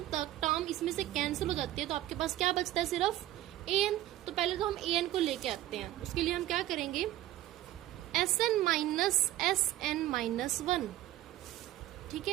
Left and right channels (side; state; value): left; quieter; 14.5 dB